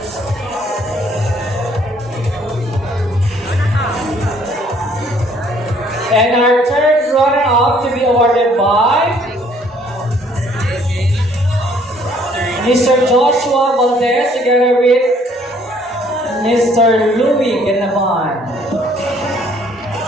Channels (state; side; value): normal; both; correlation 0.61